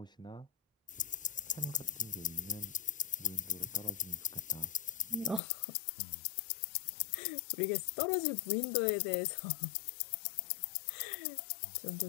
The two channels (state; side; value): drops out; right; at 5.4 s